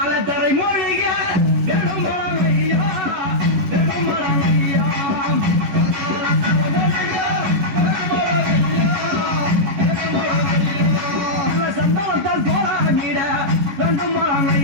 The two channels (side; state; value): left; late; 11 ms